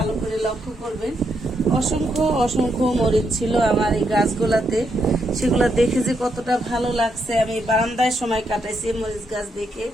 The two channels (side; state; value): both; normal; correlation 0.79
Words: করে লক্ষ্য করবেন। অসংখ্য অসংখ্য মরিচ ছিল আমার এই গাছগুলাতে। সেগুলা দেখে যে কতটা ভালো লাগছে। আমি বারান্দায় সময় কাটাইছি মরিচ গাছ দেখে।